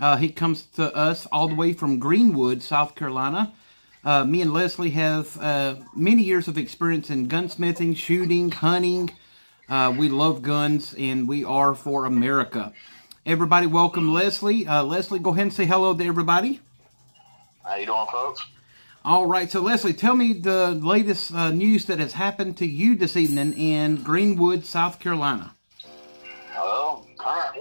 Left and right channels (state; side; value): inverted; both; correlation -1.00